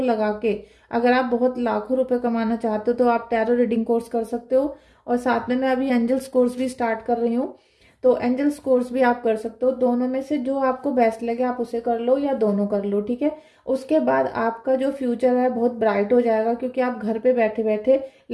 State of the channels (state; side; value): identical; both; correlation 1.00